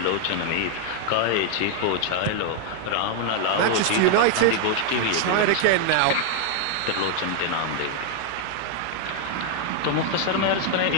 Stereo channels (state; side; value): different; both; correlation 0.00